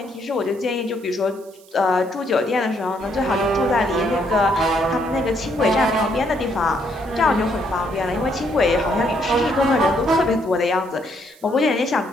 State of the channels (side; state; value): right; noise; hiss, 26 dB below the sound